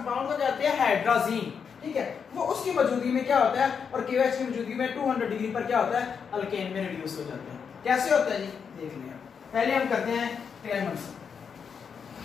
को कहते हैं हाइड्राजीन, ठीक है। वो उसकी मौजूदगी में क्या होता है, और KOH की मौजूदगी में 200 डिग्री पर क्या होता है, अल्केन में रिड्यूस हो जाता है। कैसे होता है जी, देख लें। पहले हम करते हैं क्लेमेंसन।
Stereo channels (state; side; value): quieter; right; 6.5 dB